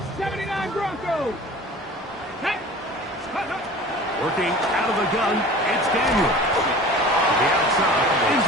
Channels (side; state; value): both; normal; correlation 0.41